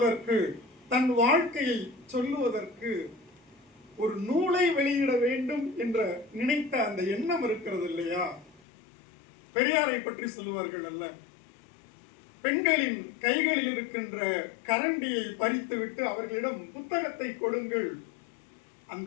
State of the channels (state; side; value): drops out; right; at 8.6 s